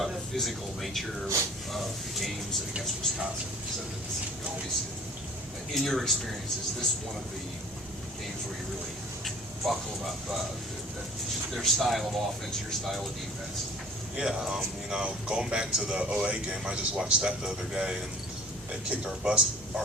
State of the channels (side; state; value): both; normal; correlation 0.48